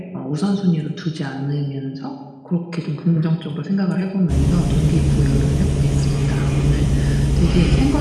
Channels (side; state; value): both; identical; correlation 1.00